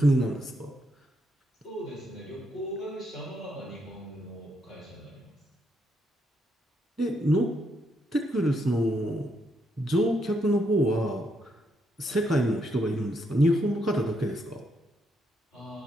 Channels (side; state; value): both; normal; correlation 0.77